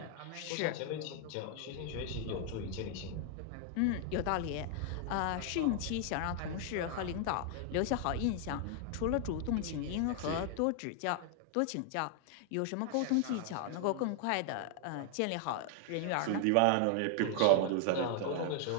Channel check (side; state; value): both; different; correlation 0.00